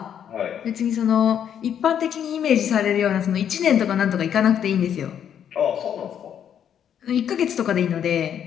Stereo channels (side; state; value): right; quieter; 9.1 dB